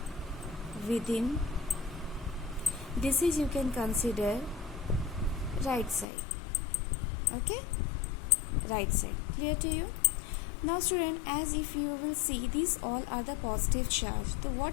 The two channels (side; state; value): right; drops out; at 6.1 s